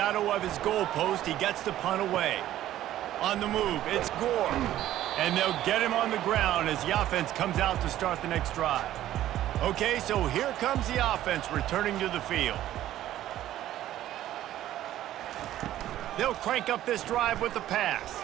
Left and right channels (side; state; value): left; quieter; 13.2 dB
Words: of his goalpost, he gets the punt away. On the move, it's Gore. And they'll get him on the ground as the offense comes out to start the next drive. Okay, so here comes the offense returning to the field. They'll crank up this drive with the pass.